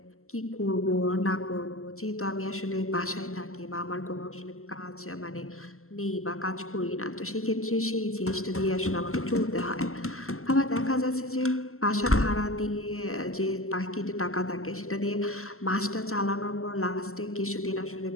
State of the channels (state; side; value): late; right; 0.63 ms